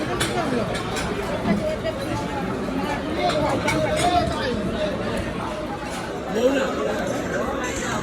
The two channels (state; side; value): identical; both; correlation 1.00